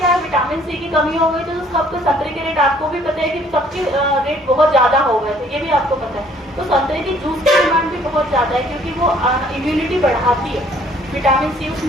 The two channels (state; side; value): normal; both; correlation 0.59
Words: है, विटामिन सी की कमी हो गई थी तो सबके संतरे के रेट आपको भी पता है कि सबके रेट बहुत ज़्यादा हो गए थे, ये भी आपको पता है। तो संतरे की जूस की डिमांड भी बहुत ज़्यादा है क्योंकि वो इम्यूनिटी बढ़ाती है, विटामिन सी